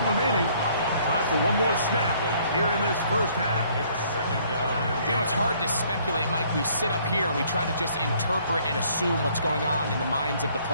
remaining. Time for one more snap here in this first half. You know, it's hard to speculate, Mike. We sit up here and we try to just interpret and assume what's going on in the minds of the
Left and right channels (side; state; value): both; inverted; correlation -0.62